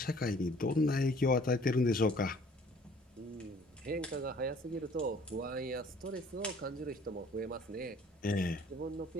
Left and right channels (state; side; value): normal; both; correlation 0.55